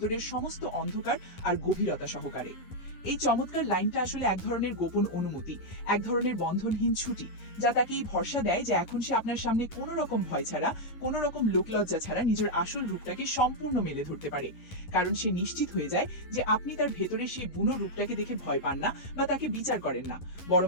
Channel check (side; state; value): right; late; 11 ms